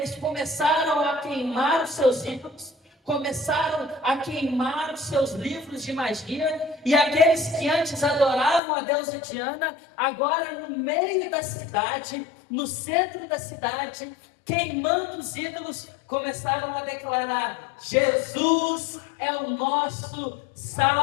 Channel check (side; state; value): right; drops out; at 8.6 s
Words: começaram a queimar os seus ídolos, começaram a queimar os seus livros de magia, e aqueles que antes adoravam a deusa Diana, agora no meio da cidade, no centro da cidade, queimando os ídolos, começaram a declarar: Jesus é o nosso